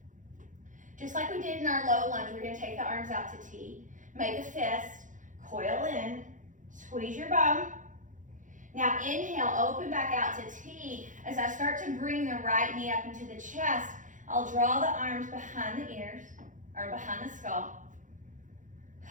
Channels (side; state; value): left; late; 0.37 ms